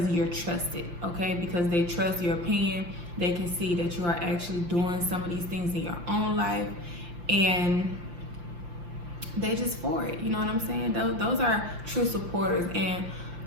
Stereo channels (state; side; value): late; left; 5.8 ms